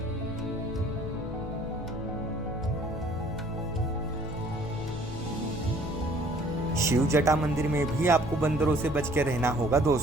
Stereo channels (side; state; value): both; normal; correlation 0.56